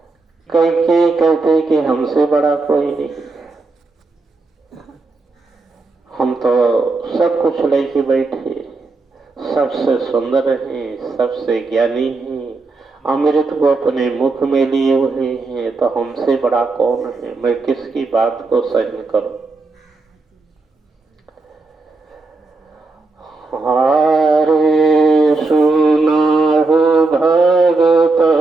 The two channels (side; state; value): left; quieter; 3.6 dB